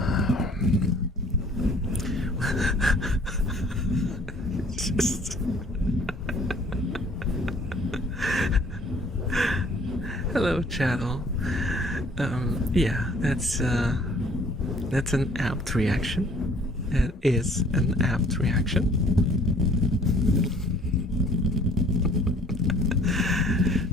just hello, chattel. Yeah, that's an apt reaction. It is an apt reaction.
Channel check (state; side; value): normal; both; correlation 0.56